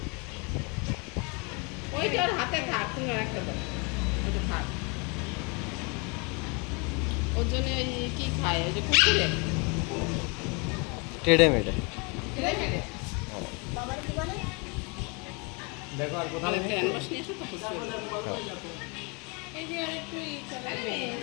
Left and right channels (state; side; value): quieter; right; 31.7 dB